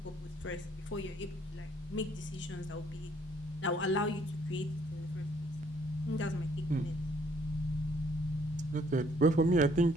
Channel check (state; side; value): normal; both; correlation 0.64